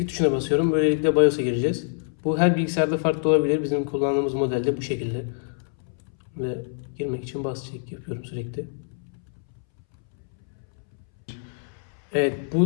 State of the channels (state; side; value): silent; right; 61 dB below the other